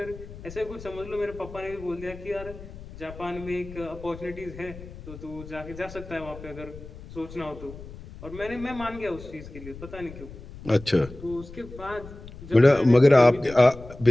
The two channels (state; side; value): noise; left; rumble, 15 dB below the sound